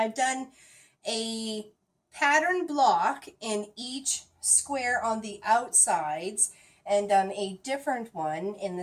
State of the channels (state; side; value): identical; both; correlation 1.00